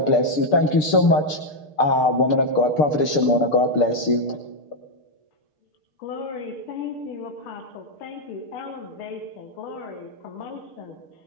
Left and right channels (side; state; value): right; late; 6.7 ms